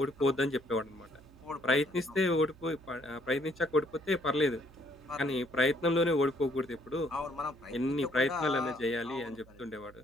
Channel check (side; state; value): right; noise; hum, 23 dB below the sound